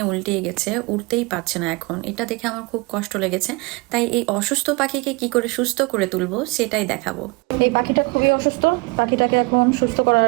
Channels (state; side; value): quieter; left; 27.0 dB